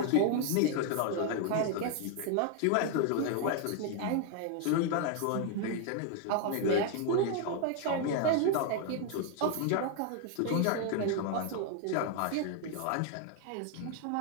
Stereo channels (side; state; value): both; different; correlation 0.01